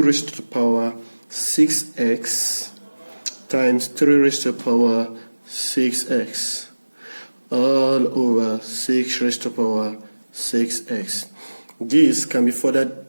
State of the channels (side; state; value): both; inverted; correlation -1.00